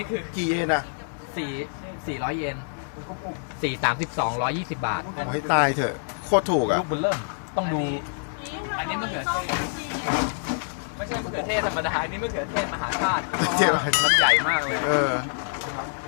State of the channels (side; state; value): right; silent; digital silence